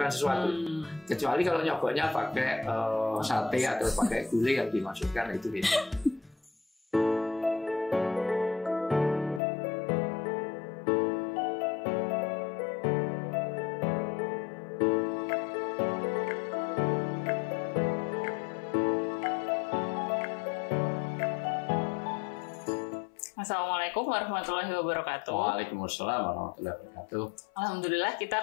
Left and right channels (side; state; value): right; drops out; at 9.4 s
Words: sesuatu. Kecuali kalau nyogoknya pakai sate atau pakai gulai yang dimasukkan itu beda. Assalamualaikum warahmatullahi wabarakatuh. Waalaikumsalam warahmatullahi wabarakatuh. Alhamdulillah kita